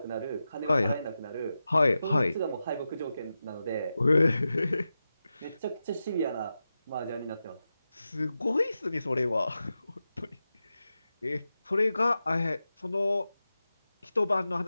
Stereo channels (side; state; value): both; inverted; correlation -0.92